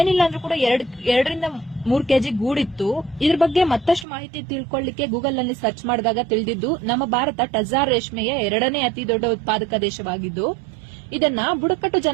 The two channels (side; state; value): left; drops out; at 4.0 s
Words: ಅಂದ್ರೂ ಕೂಡ 2ರಿಂದ 3 ಕೆಜಿ ಗೂಡಿತ್ತು. ಇದ್ರ ಬಗ್ಗೆ ಮತ್ತಷ್ಟು ಮಾಹಿತಿ ತಿಳ್ಕೊಳ್ಳಿಕ್ಕೆ ಗೂಗಲ್ ನಲ್ಲಿ ಸರ್ಚ್ ಮಾಡಿದಾಗ ತಿಳಿದಿದ್ದು ನಮ್ಮ ಭಾರತ ಟಜಾರ್ ರೇಷ್ಮೆಯ 2ನೇ ಅತಿ ದೊಡ್ಡ ಉತ್ಪಾದಕ ದೇಶವಾಗಿದ್ದು ಇದನ್ನ ಬುಡಕಟ್ಟು